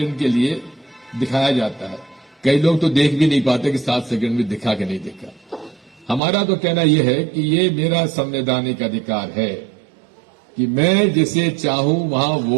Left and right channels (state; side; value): drops out; left; at 6.2 s